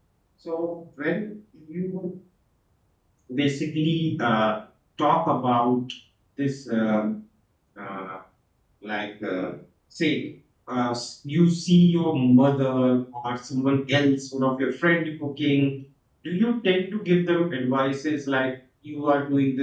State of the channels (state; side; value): identical; both; correlation 1.00